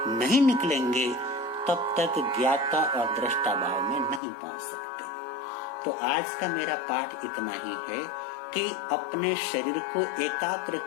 नहीं निकलेंगे तब तक ज्ञाता और दृष्टा भाव में नहीं पहुंच सकते। तो आज का मेरा पाठ इतना ही है कि अपने शरीर को एकाग्र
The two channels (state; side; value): drops out; right; at 4.2 s